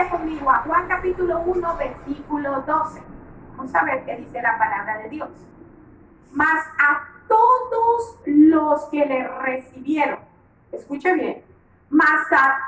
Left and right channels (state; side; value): identical; both; correlation 1.00